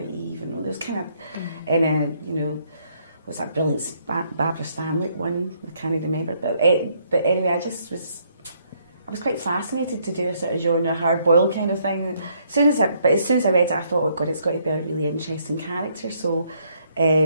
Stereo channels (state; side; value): inverted; both; correlation -0.70